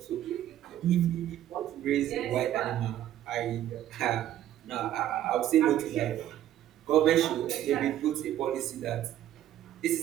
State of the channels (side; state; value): left; quieter; 12.2 dB